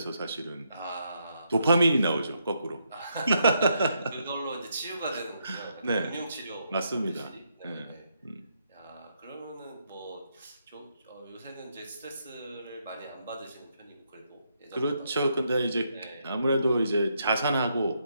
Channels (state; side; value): inverted; both; correlation -0.78